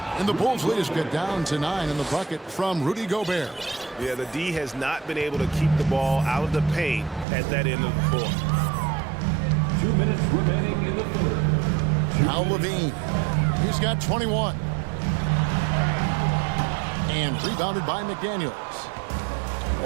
And the Bulls lead is get down to 9 in the bucket from Rudy Gobert. Yeah, the D has not been able to keep the ball out of the paint at that end of the court. 2 minutes remaining in the third. Now LaVine. He's got 21. And rebounded by McDaniels.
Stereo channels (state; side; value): drops out; left; at 7.2 s